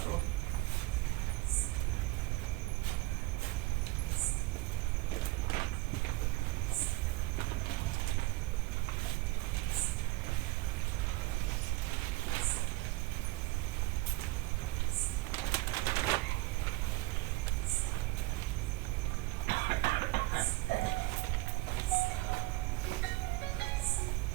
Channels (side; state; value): left; quieter; 21.4 dB